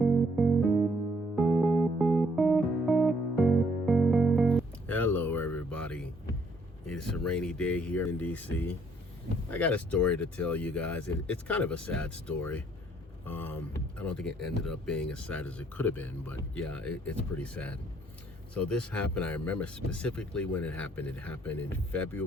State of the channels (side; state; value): both; normal; correlation 0.66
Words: Hello everybody. It's a rainy day here in DC. I got a story to tell you guys. It's kind of a sad story. I don't think it ended up being as sad as it could have been, but yeah, it's pretty sad. So this happened, I remember specifically when it happened. It happened in